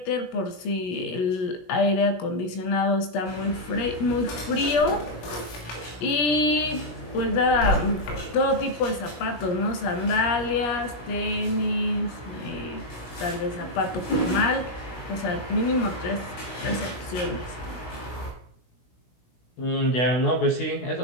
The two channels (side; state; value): right; late; 17 ms